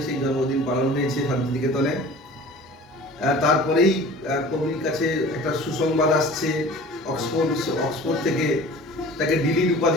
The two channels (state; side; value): normal; both; correlation 0.43